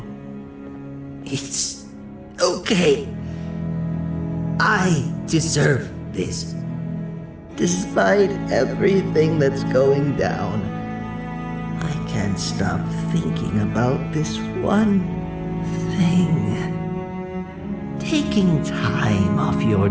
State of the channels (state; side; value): identical; both; correlation 1.00